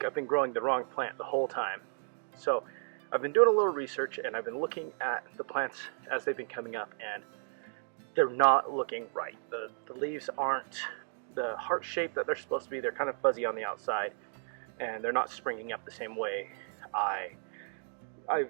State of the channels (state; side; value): silent; left; digital silence